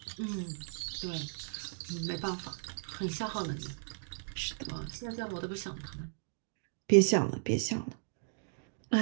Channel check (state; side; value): silent; left; digital silence